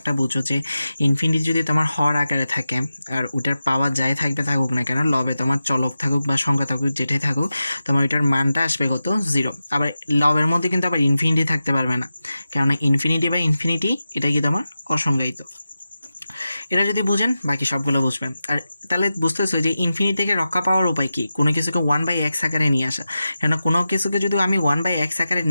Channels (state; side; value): inverted; both; correlation -0.92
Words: বুঝো যে ইনফিনিটি যদি তোমার হর আকারে থাকে আর ওটার পাওয়ার যাই থাকুক না কেন, লবে তোমার চলক থাকুক বা সংখ্যা থাকুক যেটাই থাকুক, তোমার ওইটার মানটা আসবে কত? 0। আবার লবের মধ্যে কিন্তু আবার ইনফিনিটি থাকতে পারবে না, কেননা ইনফিনিটি বা ইনফিনিটি এটা কি তোমার অসংজ্ঞায়িত। এটা যদি বুঝেন বাকি সবগুলো বুঝবেন। আর তাহলে বুঝতেছো যে ইনফিনিটি থেকে রক্ষা পাওয়ার উপায় কি? কোনো কিছুকে 1/x আকারে নিয়ে আসা। কেন কোনো কিছুকে যদি আমি 1/x আকারে